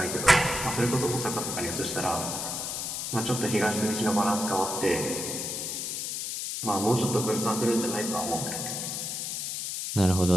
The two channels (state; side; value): noise; left; hiss, 3 dB below the sound